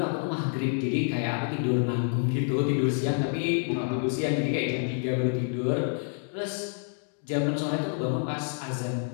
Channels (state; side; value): silent; right; 59 dB below the other